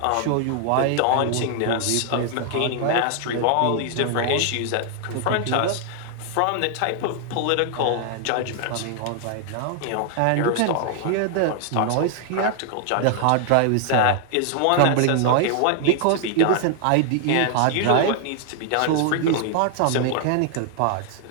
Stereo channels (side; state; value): both; different; correlation 0.00